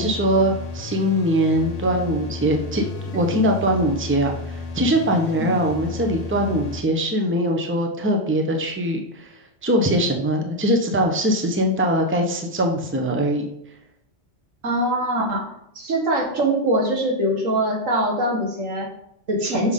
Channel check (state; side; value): normal; both; correlation 0.05